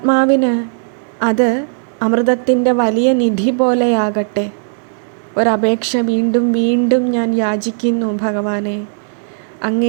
അത് അമൃതത്തിൻ്റെ വലിയ നിധി പോലെയാകട്ടെ. ഒരപേക്ഷ വീണ്ടും വീണ്ടും ഞാൻ യാചിക്കുന്നു ഭഗവാനെ.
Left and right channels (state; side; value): silent; left; digital silence